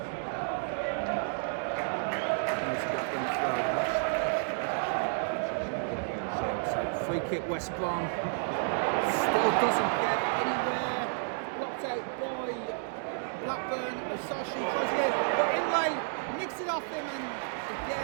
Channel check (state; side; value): silent; left; digital silence